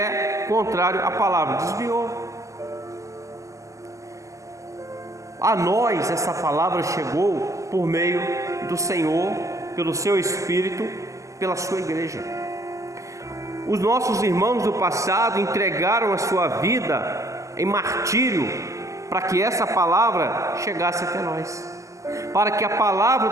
contrário à palavra. Desviou. A nós essa palavra chegou por meio do Senhor, pelo seu Espírito, pela sua igreja. Os nossos irmãos do passado entregaram a sua vida em martírio para que essa palavra chegasse até nós, para que a palavra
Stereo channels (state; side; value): late; left; 0.16 ms